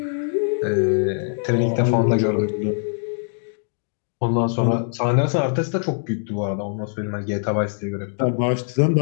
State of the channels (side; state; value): right; silent; digital silence